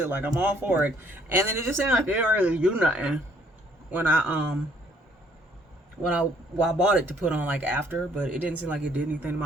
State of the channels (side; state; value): both; normal; correlation 0.63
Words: Like, I'm all for it. And then it just seemed like it didn't really do nothing when I bought it to put on like after, but it didn't seem like it did anything to